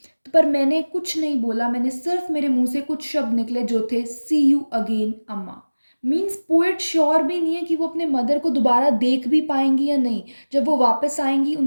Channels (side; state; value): both; inverted; correlation -1.00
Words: पर मैंने कुछ नहीं बोला, मैंने सिर्फ मेरे मुंह से कुछ शब्द निकले जो थे सी यू अगेन अम्मा। मीन्स पोएट श्योर भी नहीं है कि वो अपने मदर को दोबारा देख भी पाएंगी या नहीं, जब वो वापस आएंगी